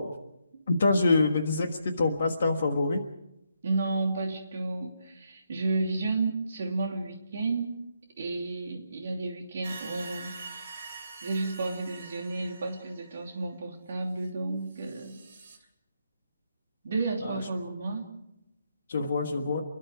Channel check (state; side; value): inverted; both; correlation -0.78